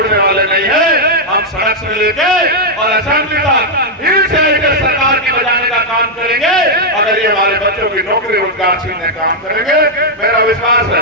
वाले नहीं हैं। हम सड़क से लेके और असेंबली तक हिल से लेकर सरकार की बजाने का काम करेंगे। अगर ये हमारे बच्चों की नौकरी रोजगार छीनने का काम करेंगे, मेरा विश्वास है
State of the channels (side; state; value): both; normal; correlation -0.03